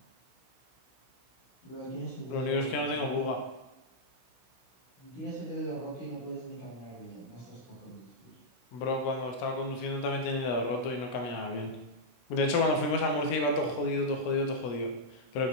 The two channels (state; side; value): late; right; 16 ms